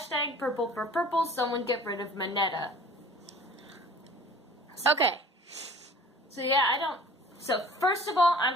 purple for purple, someone get rid of Mineta. Okay. So yeah, So first of all,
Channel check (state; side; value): normal; both; correlation 0.47